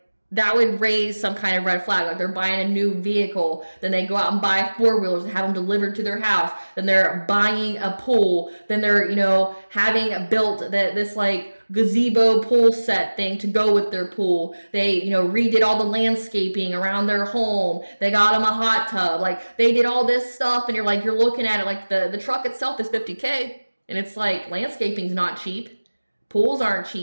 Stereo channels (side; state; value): both; inverted; correlation -1.00